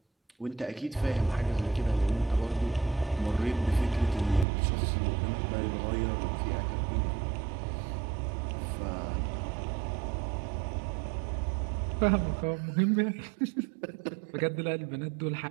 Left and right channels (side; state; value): left; drops out; at 4.5 s